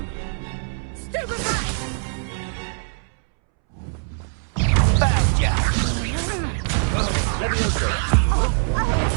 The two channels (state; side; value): silent; left; 64 dB below the other